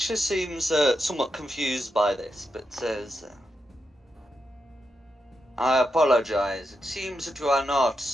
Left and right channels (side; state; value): both; normal; correlation 0.86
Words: seems somewhat confused by this, but says, I apologize. It seems that you are not